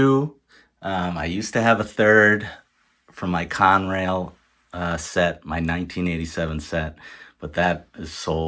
I used to have a third from my Conrail set, my 1987 set, but that is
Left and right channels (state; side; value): identical; both; correlation 1.00